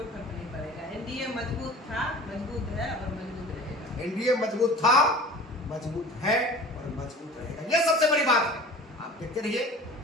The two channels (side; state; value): both; normal; correlation 0.42